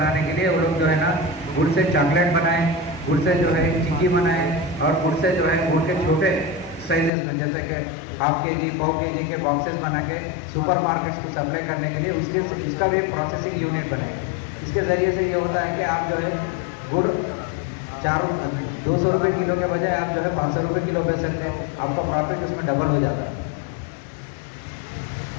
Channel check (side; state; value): right; drops out; at 7.1 s